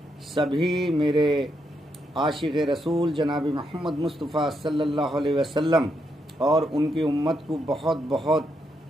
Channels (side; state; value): both; normal; correlation 0.80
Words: सभी मेरे आशिक़ रसूल जनाब मोहम्मद मुस्तफ़ा सल्लल्लाहु अलैहि वसल्लम और उनकी उम्मत को बहुत बहुत